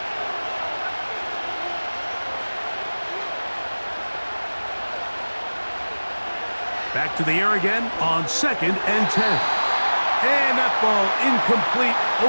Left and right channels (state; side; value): inverted; both; correlation -1.00